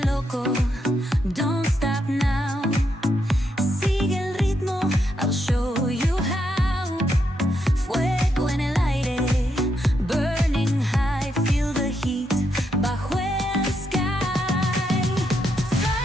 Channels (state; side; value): normal; both; correlation 0.80